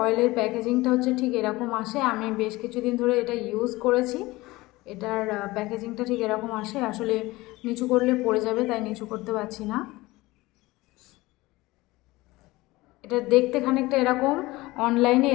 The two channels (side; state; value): right; quieter; 20.1 dB